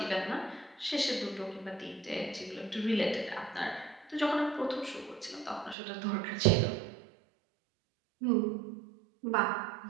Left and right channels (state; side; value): drops out; left; at 5.8 s